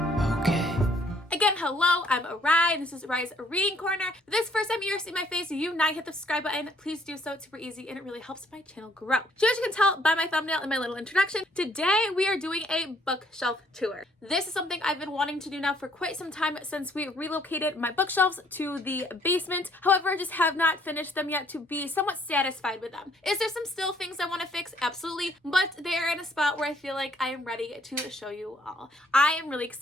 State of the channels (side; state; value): both; normal; correlation 0.64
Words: okay. Again, hello, I'm Rai, and this is Rai's Reading Corner. If this is the first time you're seeing my face, you not hit the subscribe button, please do so. It's super easy and it really helps my channel grow. So as you can tell by my thumbnail and my little introduction, today we are doing a bookshelf tour. This is something I've been wanting to do now for quite some time since we relocated my bookshelves to the basement. However, I just have not finished them yet to be somewhat satisfied with them. Is there some still things I want to fix? Absolutely, but they're in a spot where I feel like I am ready to show you all. I am really